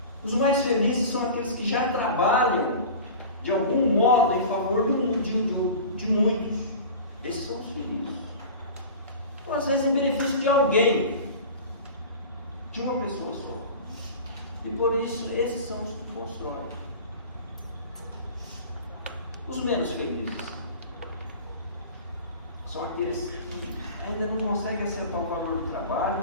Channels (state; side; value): inverted; both; correlation -0.36